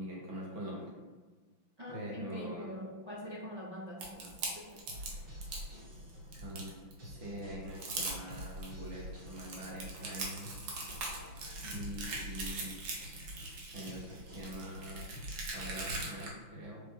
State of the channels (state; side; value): late; left; 5.9 ms